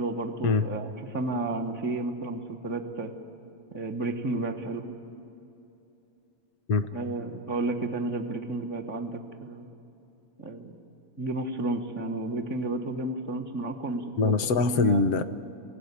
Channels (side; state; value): right; late; 7.8 ms